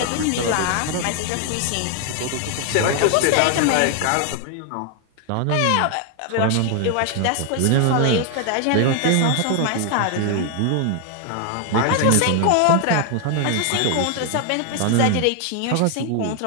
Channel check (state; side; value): different; both; correlation 0.00